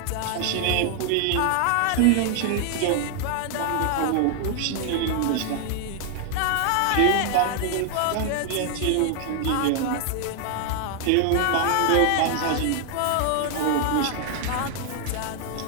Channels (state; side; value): different; both; correlation 0.00